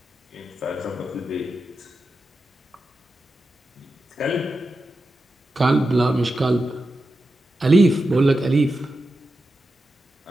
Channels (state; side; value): normal; both; correlation 0.90